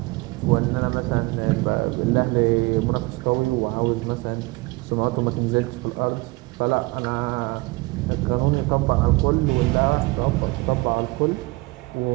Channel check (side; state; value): left; quieter; 23.8 dB